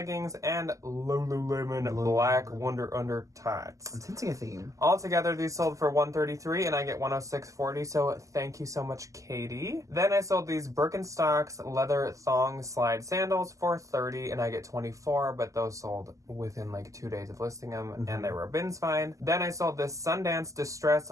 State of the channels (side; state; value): left; late; 0.16 ms